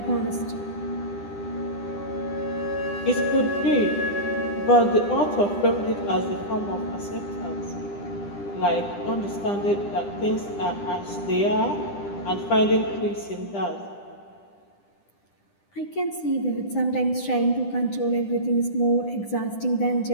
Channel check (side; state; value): right; late; 10 ms